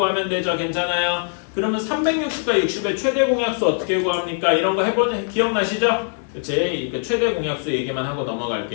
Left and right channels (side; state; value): right; silent; 65 dB below the other